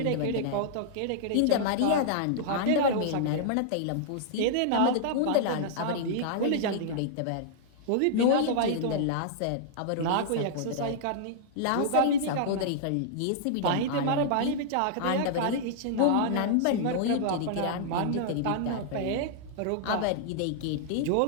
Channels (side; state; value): both; different; correlation -0.01